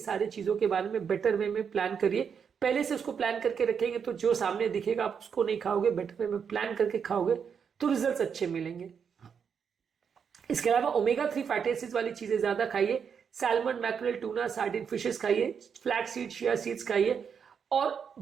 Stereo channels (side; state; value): left; quieter; 6.9 dB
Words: चीजों के बारे में बेटर वे में प्लान करिए। पहले से उसको प्लान करके रखेंगे तो जो सामने दिखेगा आप उसको नहीं खाओगे, बेटर वे में प्लान करके खाओगे तो रिजल्ट अच्छे मिलेंगे। इसके अलावा ओमेगा 3 फैटी एसिड्स वाली चीजें ज्यादा खाइए। Salmon, mackerel, tuna, sardine fishes खाइए, फ्लैक्स सीड, चिया सीड्स खाइए और